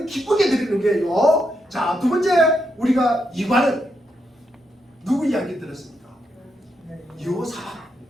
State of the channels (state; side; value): normal; both; correlation 0.81